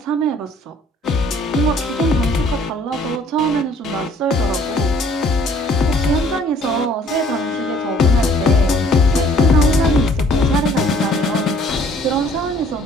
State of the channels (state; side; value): normal; both; correlation 0.58